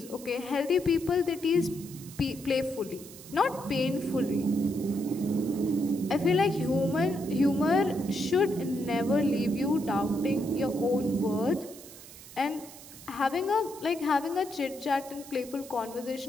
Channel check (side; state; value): right; noise; hiss, 17 dB below the sound